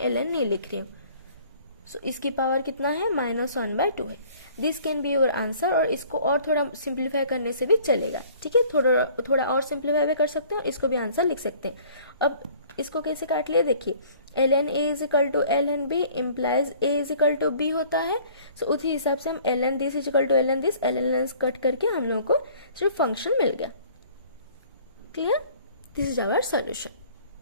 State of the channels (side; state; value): both; inverted; correlation -0.53